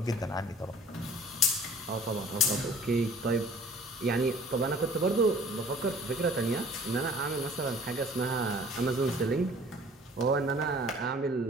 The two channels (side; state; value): both; normal; correlation 0.50